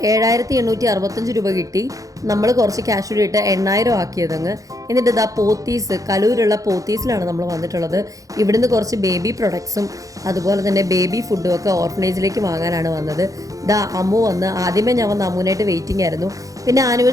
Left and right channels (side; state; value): left; late; 0.17 ms